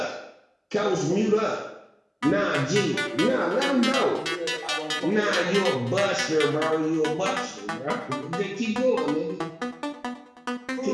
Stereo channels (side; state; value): both; identical; correlation 1.00